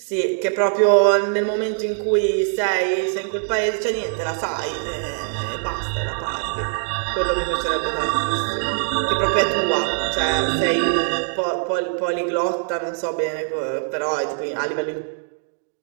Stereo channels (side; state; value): left; silent; digital silence